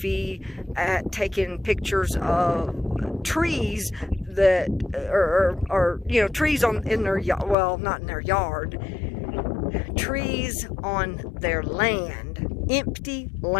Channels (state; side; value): drops out; right; at 7.6 s